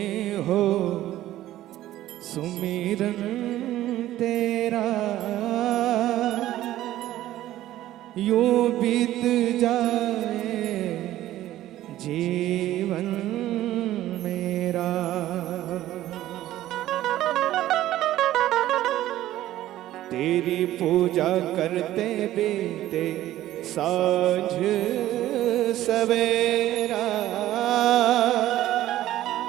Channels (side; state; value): left; quieter; 14.1 dB